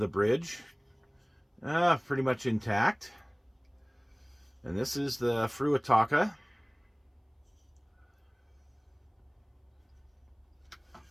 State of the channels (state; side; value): identical; both; correlation 1.00